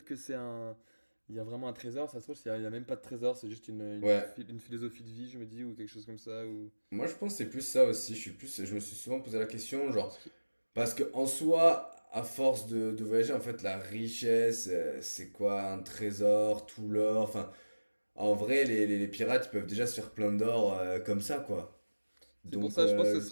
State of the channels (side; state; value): both; inverted; correlation -1.00